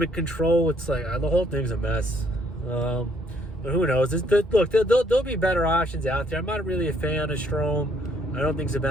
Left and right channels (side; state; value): both; normal; correlation 0.67